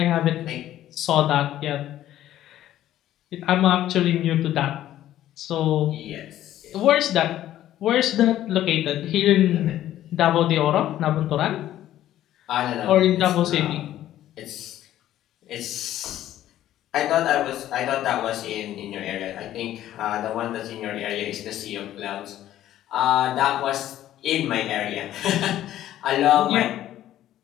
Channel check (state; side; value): quieter; right; 12.8 dB